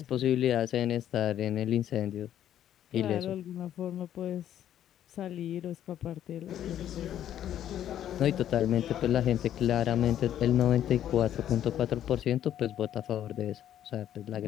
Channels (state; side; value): quieter; right; 11.0 dB